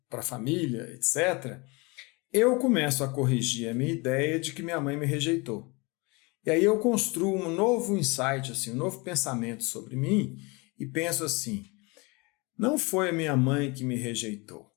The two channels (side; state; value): right; quieter; 27.4 dB